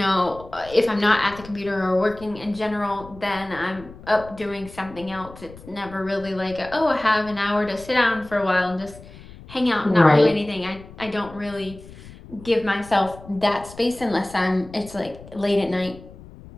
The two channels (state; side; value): noise; left; rumble, 18 dB below the sound